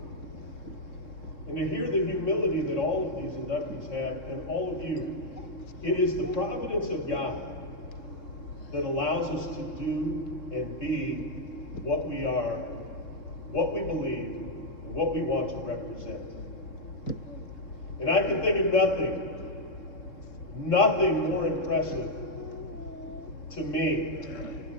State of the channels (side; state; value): right; late; 3.6 ms